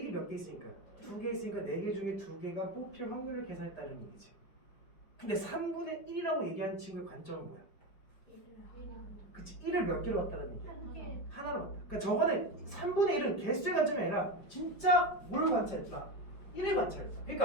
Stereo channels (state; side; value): late; right; 5.2 ms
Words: 1이 몇 개 있으니까? 두 개 있으니까 네 개 중에 두 개가 뽑힐 확률을 계산했다는 얘기지. 근데 3분의 1이라고 얘기하는 친구의 관점은 뭐야? 그치, 1을 몇 개로 봤다는 얘기야? 하나로 봤다. 그러니까 저거는 3분의 1은 개수의 관점이 아니라 진짜 뭘 관찰했다? 1을 관찰했다.